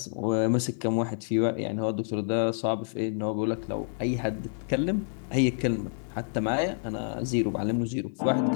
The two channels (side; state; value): right; silent; digital silence